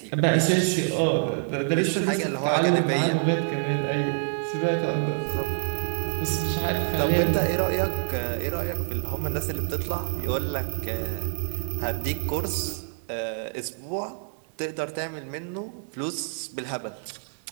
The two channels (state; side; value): silent; left; digital silence